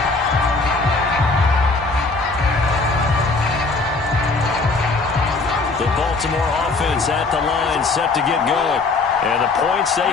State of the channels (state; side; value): quieter; right; 3.8 dB